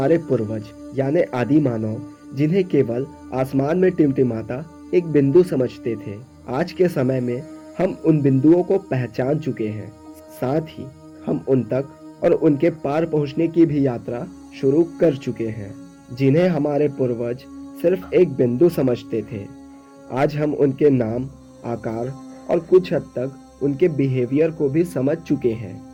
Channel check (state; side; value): identical; both; correlation 1.00